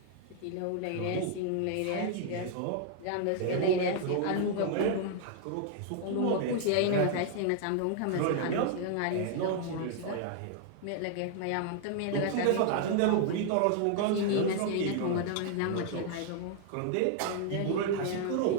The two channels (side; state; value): both; different; correlation 0.00